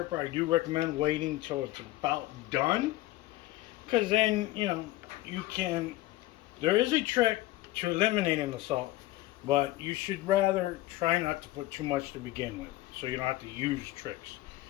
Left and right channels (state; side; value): quieter; right; 17.0 dB